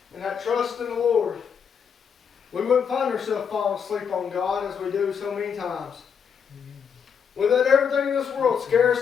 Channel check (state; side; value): quieter; right; 7.0 dB